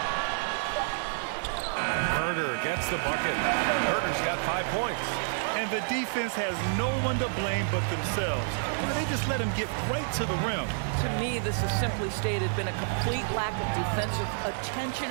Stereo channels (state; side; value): silent; left; 58 dB below the other